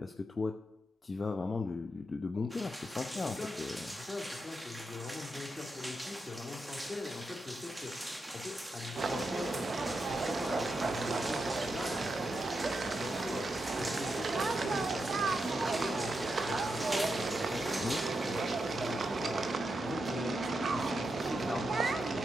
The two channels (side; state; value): both; normal; correlation 0.86